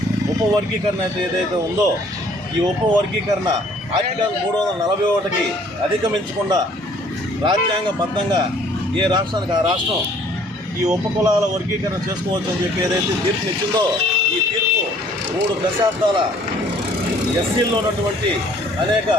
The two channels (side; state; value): both; normal; correlation 0.58